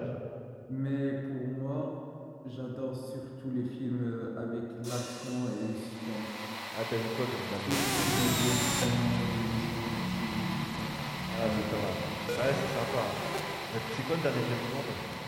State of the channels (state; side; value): identical; both; correlation 1.00